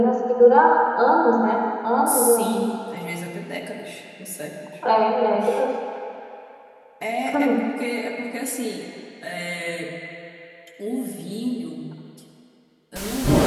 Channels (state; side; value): identical; both; correlation 1.00